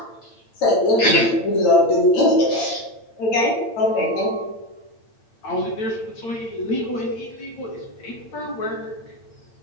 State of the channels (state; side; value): late; right; 8.8 ms